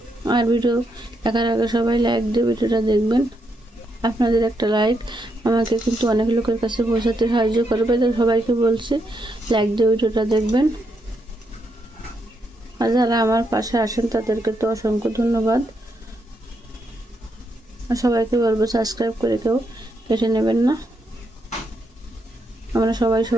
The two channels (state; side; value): normal; both; correlation 0.80